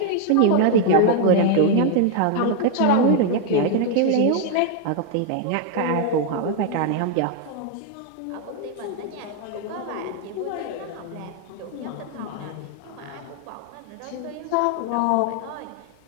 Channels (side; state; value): both; different; correlation 0.00